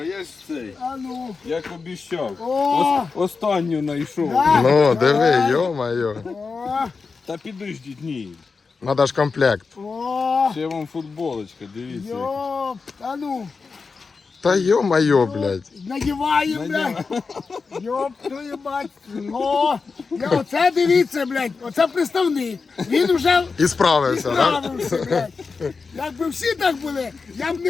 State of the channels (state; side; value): quieter; right; 4.7 dB